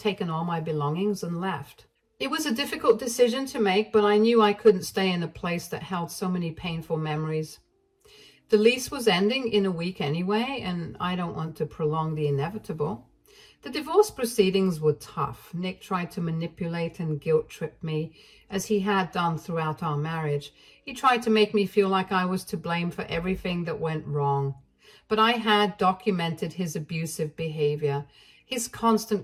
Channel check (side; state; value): both; identical; correlation 1.00